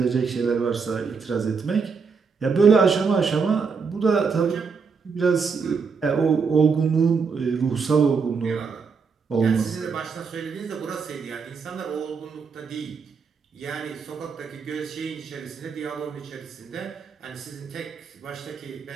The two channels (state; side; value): quieter; left; 5.4 dB